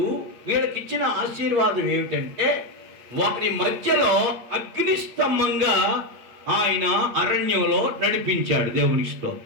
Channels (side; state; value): left; late; 8.6 ms